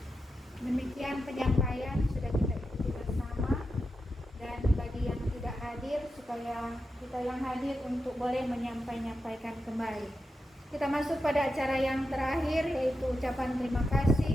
Demikian penyampaian sudah kita ikuti bersama, dan bagi yang tidak hadir supaya kita yang hadir untuk boleh menyampaikan kembali. Kita masuk pada acara yang terakhir, yaitu ucapan terima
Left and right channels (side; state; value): both; normal; correlation 0.88